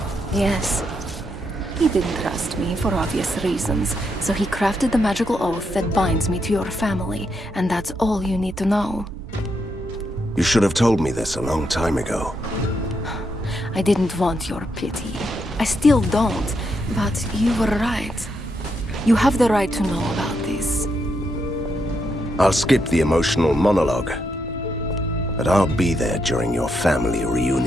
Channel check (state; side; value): normal; both; correlation 0.80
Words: Yes. He didn't trust me for obvious reasons, so he crafted the magical oath that binds me to your family, and that's all you need to know. You should have told me this a long time ago. I didn't want your pity. I still don't, but you were right. You have the right to know about this. I'll skip the emotional monologue, but I'll be there during your family